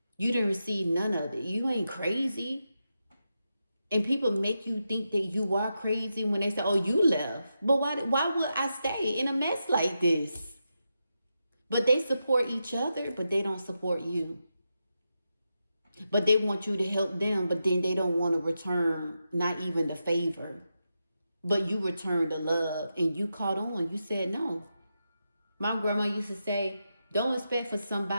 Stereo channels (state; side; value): inverted; both; correlation -0.87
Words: You didn't receive none of it. You ain't crazy. And people make you think that you are crazy when they say, oh, you left. But why would I stay in a mess like this? But they support each other, but they don't support you. But they want you to help them, but then they don't want to return not even the favor. But you return the love and you caught on. You said no. My grandma used to say, don't expect for